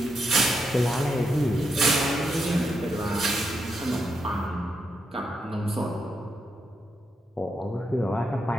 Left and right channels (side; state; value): both; normal; correlation 0.82